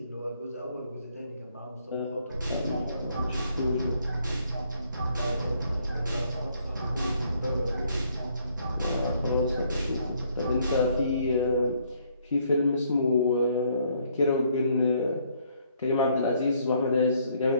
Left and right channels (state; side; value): inverted; both; correlation -0.68